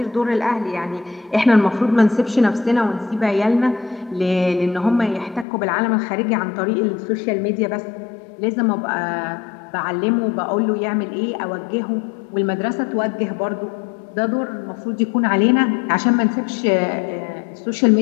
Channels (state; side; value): drops out; right; at 5.5 s